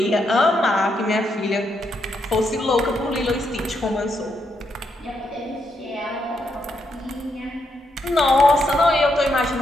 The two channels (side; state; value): both; normal; correlation 0.79